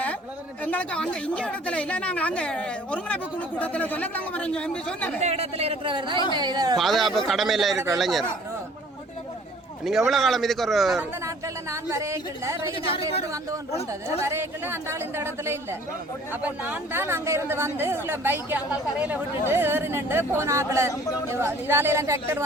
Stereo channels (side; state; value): both; normal; correlation 0.53